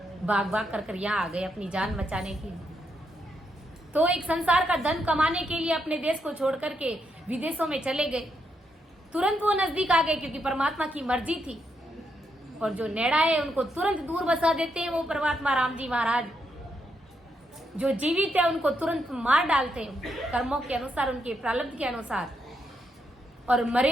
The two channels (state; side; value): normal; both; correlation 0.80